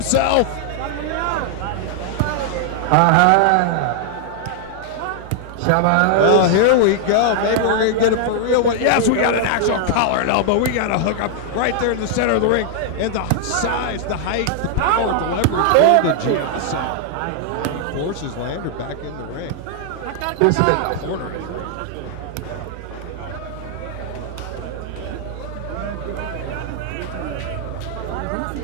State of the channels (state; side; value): different; both; correlation -0.01